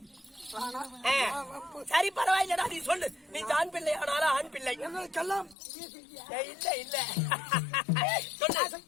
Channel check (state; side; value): drops out; right; at 5.6 s